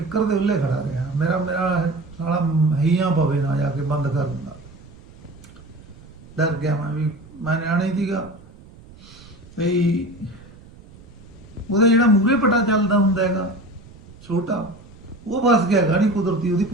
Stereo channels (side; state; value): right; noise; rumble, 21 dB below the sound